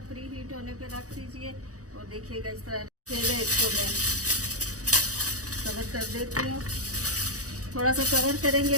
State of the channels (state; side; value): late; left; 0.66 ms